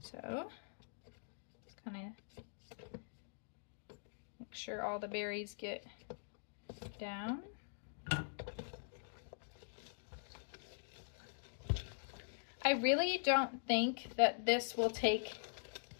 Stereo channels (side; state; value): right; silent; digital silence